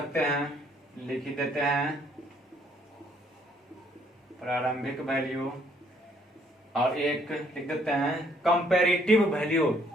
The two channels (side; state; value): both; normal; correlation 0.66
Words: हैं, लिख ही देते हैं प्रारंभिक वैल्यू। और एक लिख देते हैं कंपैरेटिव वैल्यू,